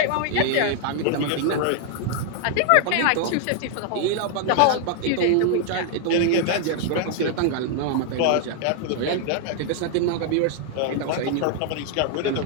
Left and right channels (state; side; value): different; both; correlation 0.00